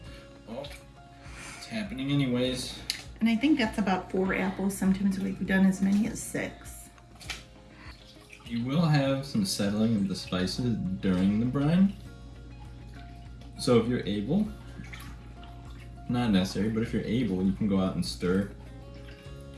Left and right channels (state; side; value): identical; both; correlation 1.00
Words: Oh, it's happening anyways. And I think that's about 4 apples. Sometimes we've done as many as 6. You will have some settling of the spices during the brine. So if you're able, not necessary, but if you're able, you can go out and stir